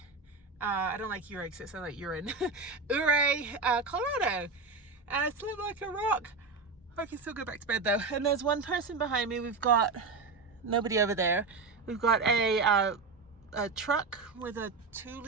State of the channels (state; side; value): quieter; left; 4.1 dB